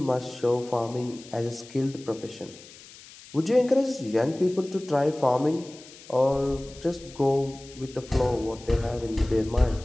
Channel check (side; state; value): left; noise; hiss, 20 dB below the sound